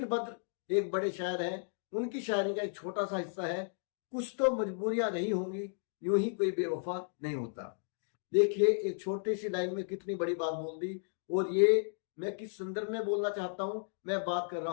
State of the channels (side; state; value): right; silent; digital silence